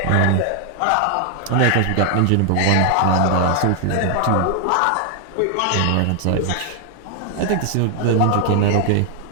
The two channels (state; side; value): different; both; correlation 0.00